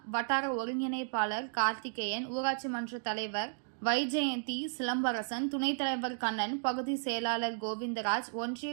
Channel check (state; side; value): silent; left; digital silence